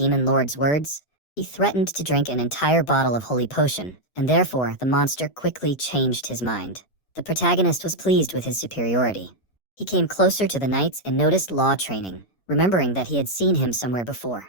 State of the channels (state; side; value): late; right; 7.8 ms